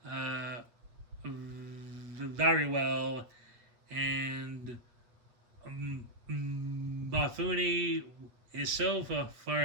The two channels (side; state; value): left; late; 8.3 ms